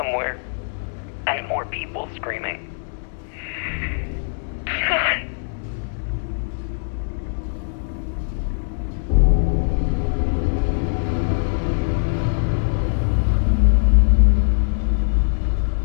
And more people screaming.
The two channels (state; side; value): silent; right; digital silence